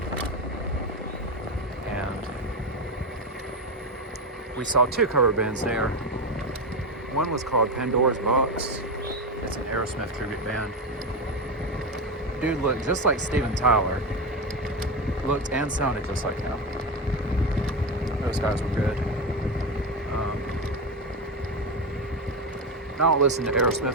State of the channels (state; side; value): normal; both; correlation 0.15